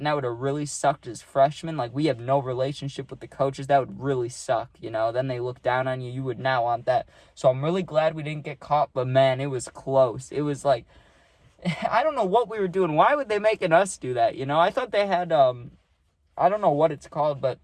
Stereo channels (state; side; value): identical; both; correlation 1.00